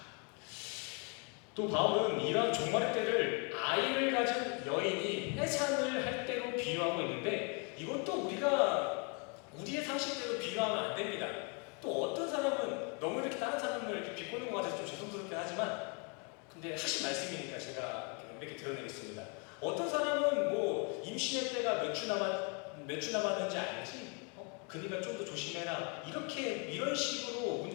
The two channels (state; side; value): quieter; right; 34.4 dB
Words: 또 바울은 이러한 종말의 때를 아이를 가진 여인이 해산을 할 때로 비유하고 있는데 이것도 우리가 우리의 상식대로 비유하면 안 됩니다. 또 어떤 사람은 너무 이렇게 다른 사람을 이렇게 비꼬는 것 같아서 좀 죄송스럽긴 하지만 근데 하신 말씀이니까 제가 이렇게 드러내겠습니다. 어떤 사람은 뭐 임신의 때가 몇 주 남았는지 알지? 그러니까 좀 더 조심해라. 이런 식으로